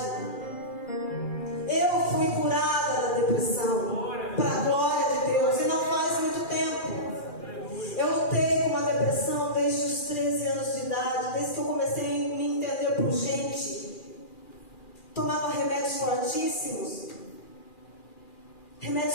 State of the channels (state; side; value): late; right; 2.4 ms